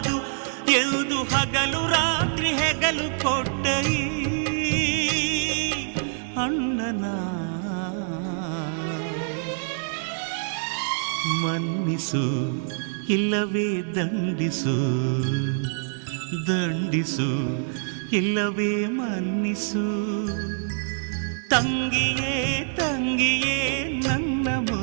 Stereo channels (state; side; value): silent; left; digital silence